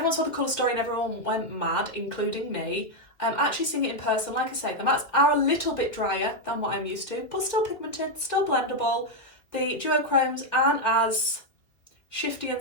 saw the colour story and everyone went mad, including me, actually seeing it in person, like I say, the mattes are a little bit drier than what I'm used to, but still pigmented, still blendable. The duochromes aren't as shifty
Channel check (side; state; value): right; late; 2.5 ms